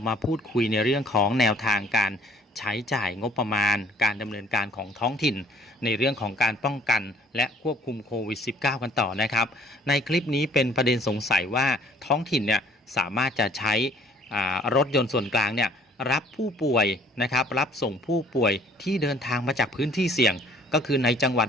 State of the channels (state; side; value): normal; both; correlation 0.57